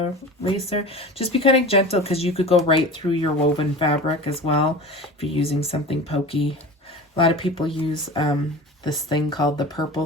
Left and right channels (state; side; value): normal; both; correlation 0.34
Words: eraser. Just be kind of gentle because you could go right through your woven fabric as well if you're using something pokey. A lot of people use this thing called the purple